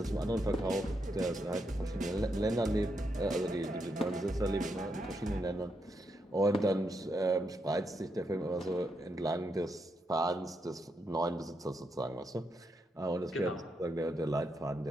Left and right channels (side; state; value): both; normal; correlation 0.82